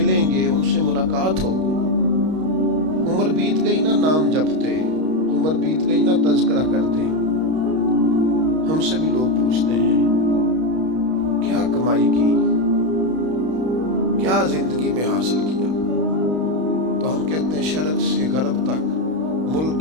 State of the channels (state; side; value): late; left; 32 ms